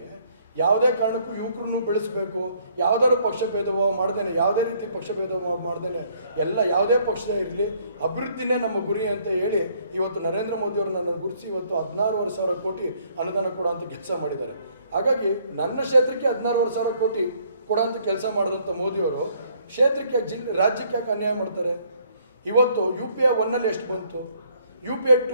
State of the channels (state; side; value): inverted; both; correlation -0.64